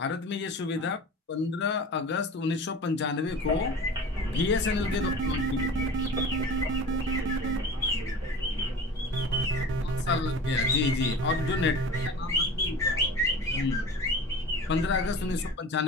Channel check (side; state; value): both; normal; correlation 0.37